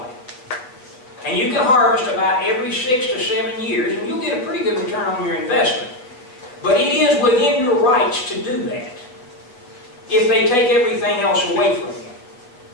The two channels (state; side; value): late; right; 8.1 ms